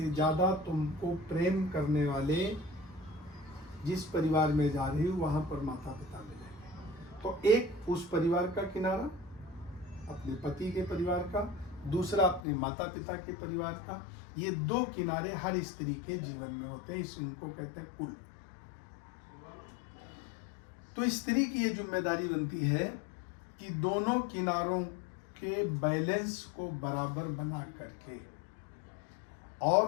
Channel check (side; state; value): right; drops out; at 12.4 s